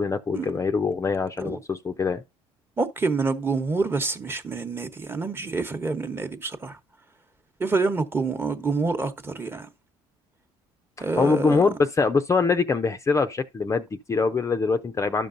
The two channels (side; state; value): both; normal; correlation 0.75